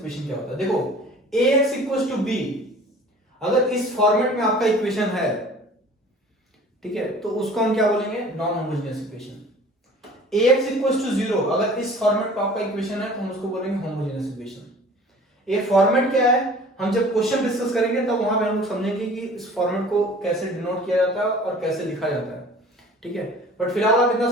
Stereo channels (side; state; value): both; normal; correlation 0.47